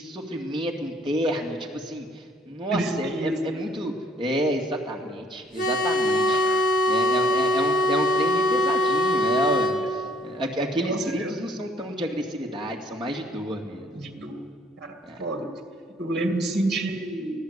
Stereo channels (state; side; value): normal; both; correlation 0.62